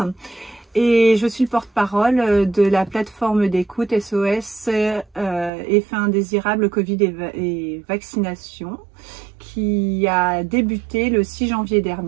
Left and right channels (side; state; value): left; drops out; at 5.5 s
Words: et je suis le porte-parole de la plateforme d'écoute SOS Effets indésirables Covid et vaccination qui a débuté le 6 janvier